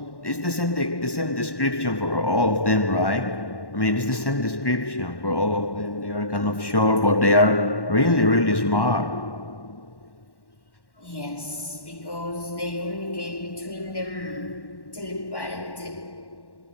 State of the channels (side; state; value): right; late; 1.1 ms